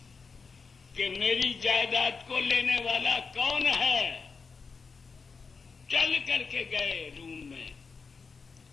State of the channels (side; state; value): right; quieter; 5.0 dB